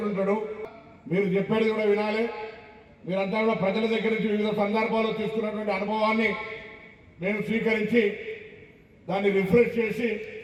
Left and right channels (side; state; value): both; identical; correlation 1.00